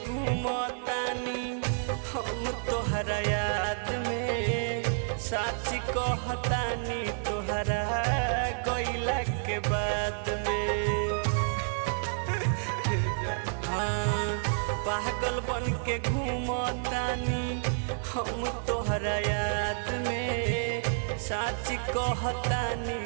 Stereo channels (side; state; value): left; silent; digital silence